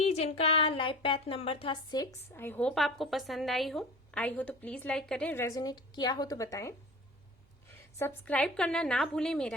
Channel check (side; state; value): both; normal; correlation 0.37